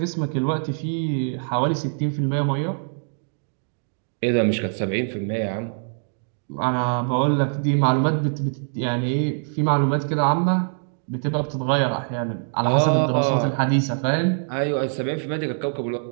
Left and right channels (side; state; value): left; silent; 63 dB below the other